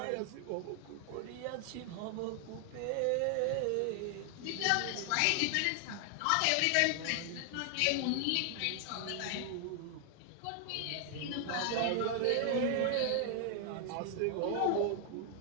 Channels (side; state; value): both; different; correlation 0.00